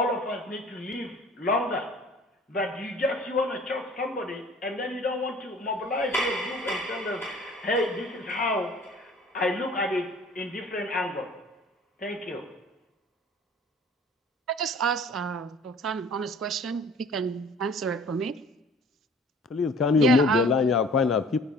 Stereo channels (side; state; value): both; normal; correlation 0.49